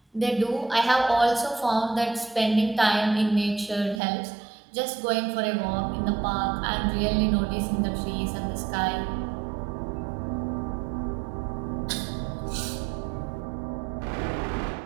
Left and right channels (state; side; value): drops out; left; at 4.0 s